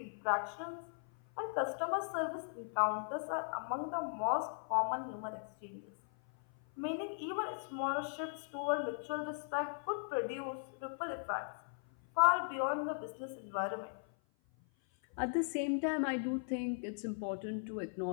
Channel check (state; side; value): silent; right; 52 dB below the other